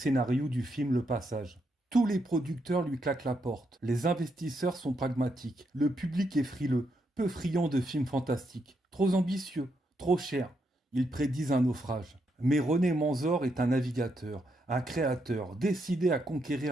du film Le Passage. Tous les producteurs lui claquent la porte, les investisseurs sont pragmatiques, le public est frileux, peu friand de films fantastiques, trop ambitieux, trop cher. Ils prédisent un naufrage. Mais René Manzor est un navigateur, un créateur, décidé à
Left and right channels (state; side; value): normal; both; correlation 0.79